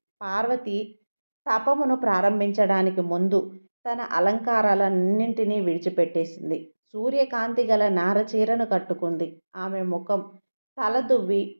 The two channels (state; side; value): inverted; both; correlation -1.00